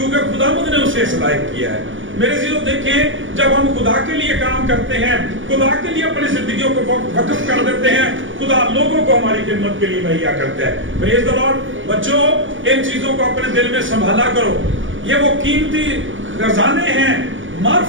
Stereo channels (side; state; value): left; late; 0.57 ms